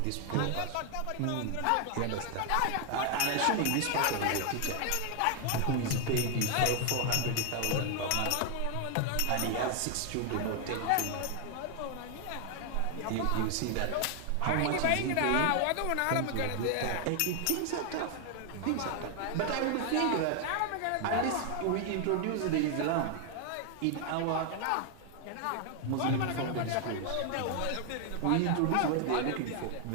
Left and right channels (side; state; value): both; different; correlation 0.00